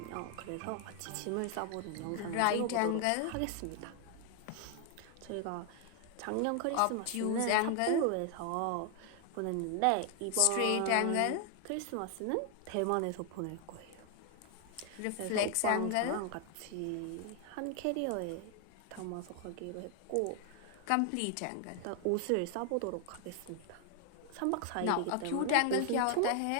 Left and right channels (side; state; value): both; different; correlation 0.00